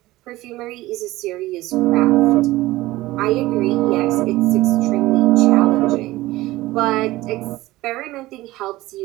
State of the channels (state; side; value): quieter; left; 18.0 dB